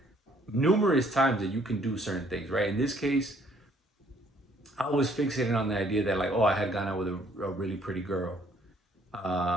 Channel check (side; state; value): both; normal; correlation 0.63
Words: numerous times that you can do certain things, right? In this case, I was fixated on the idea that like, oh, I had gone out with a really pretty girl,